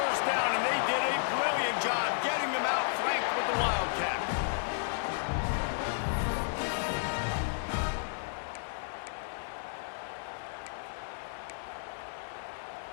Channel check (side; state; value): right; silent; digital silence